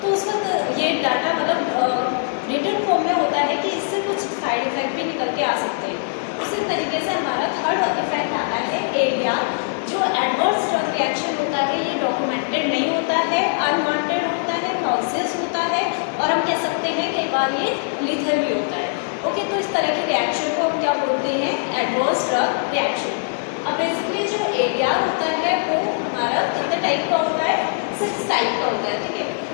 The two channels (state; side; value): silent; right; digital silence